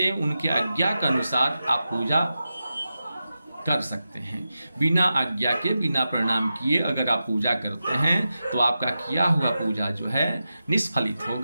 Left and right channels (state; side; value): inverted; both; correlation -0.91